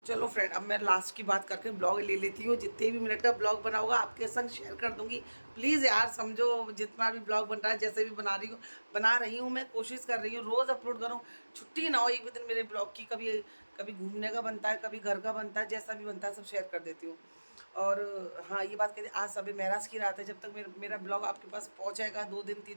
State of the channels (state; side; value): inverted; both; correlation -1.00